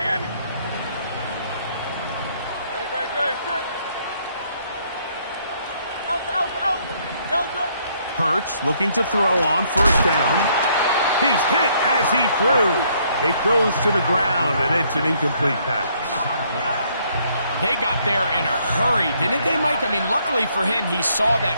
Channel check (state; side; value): inverted; both; correlation -0.68